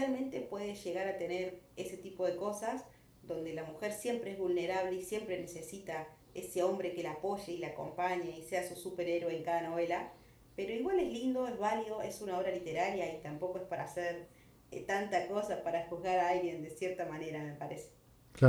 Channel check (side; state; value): both; identical; correlation 1.00